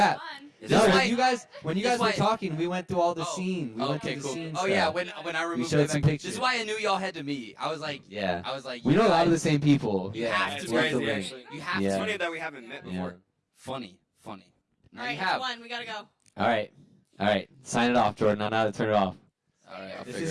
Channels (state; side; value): identical; both; correlation 1.00